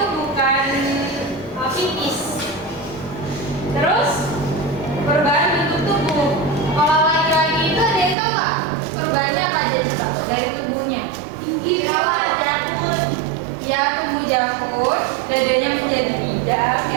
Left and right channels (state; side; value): drops out; left; at 8.2 s